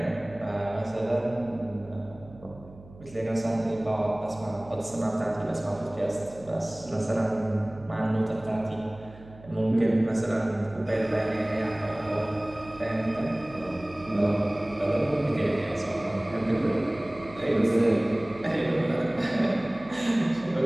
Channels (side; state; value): right; noise; hum, 20 dB below the sound